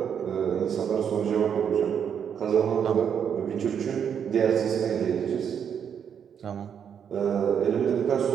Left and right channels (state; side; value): quieter; left; 7.9 dB